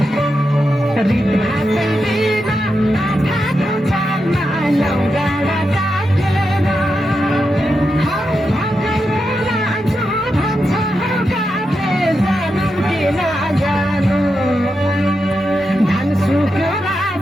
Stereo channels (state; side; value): normal; both; correlation 0.87